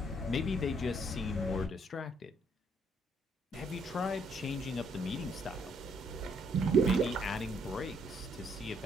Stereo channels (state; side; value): normal; both; correlation 0.69